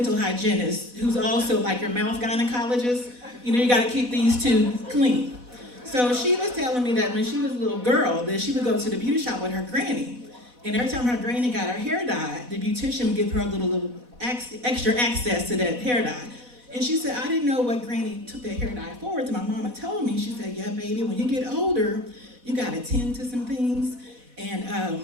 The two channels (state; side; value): late; left; 4.1 ms